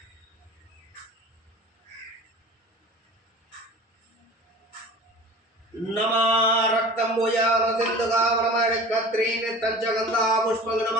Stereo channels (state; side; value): normal; both; correlation 0.40